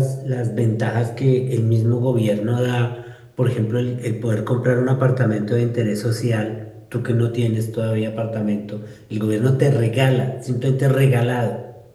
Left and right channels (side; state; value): both; identical; correlation 1.00